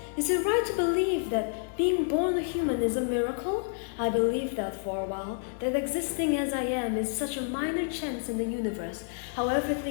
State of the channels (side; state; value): right; silent; digital silence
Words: Is it right to believe that being born a human is a miracle? I believed that for a while, that existing as I am is such a minor chance in the universe, how